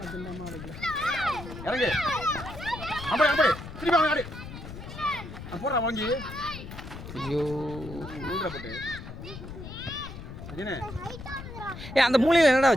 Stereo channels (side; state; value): left; noise; rumble, 11 dB below the sound